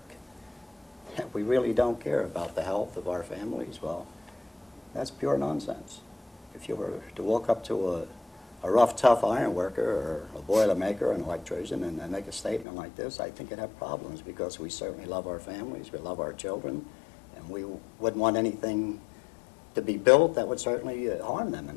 We really don't care about the health of our families. Well, that's pure nonsense. If you were to walk up to a rough, tough iron worker or a boiler maker, an electrician, and make a statement like this, I think it'd have problems, because we certainly love our families, we love our children, and we wouldn't want anything to be built that would certainly harm them in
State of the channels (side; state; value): right; drops out; at 12.7 s